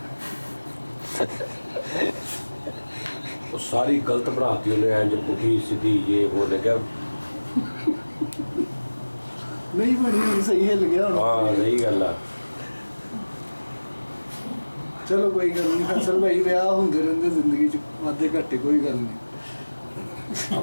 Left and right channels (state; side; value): inverted; both; correlation -1.00